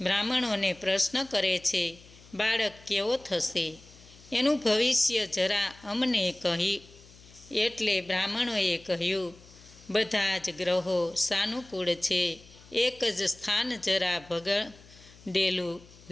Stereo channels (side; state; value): left; noise; hum, 23 dB below the sound